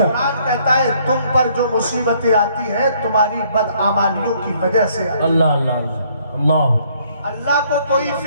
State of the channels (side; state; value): both; inverted; correlation -0.65